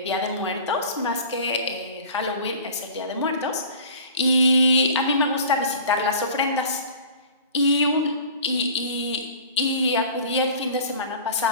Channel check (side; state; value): both; inverted; correlation -0.42